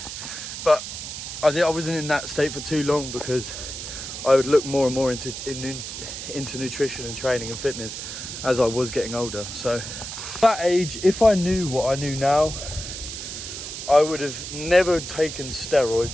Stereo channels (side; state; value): right; noise; hiss, 8 dB below the sound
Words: I wasn't in that state for too long, because I would look more and more into nutrition and training and fitness as I was getting older. So at that age, if I knew what I knew now, I would have never taken